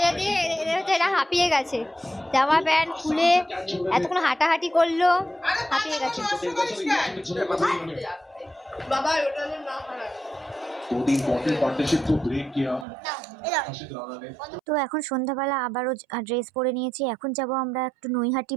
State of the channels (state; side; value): drops out; left; at 12.9 s